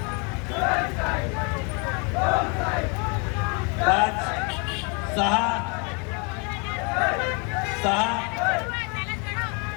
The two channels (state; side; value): quieter; right; 34.1 dB